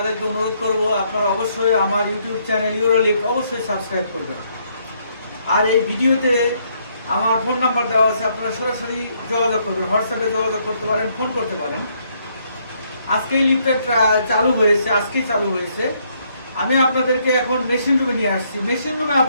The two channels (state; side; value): inverted; both; correlation -0.71